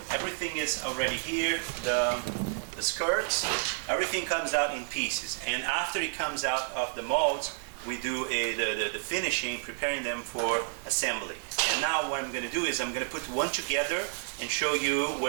everything is already here. The skirts, everything comes out in pieces. And after it comes out of the molds, we do the finishing, preparing them for assembly. And now what I'm going to do is I'm going to put one together and show you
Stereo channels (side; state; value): left; silent; 58 dB below the other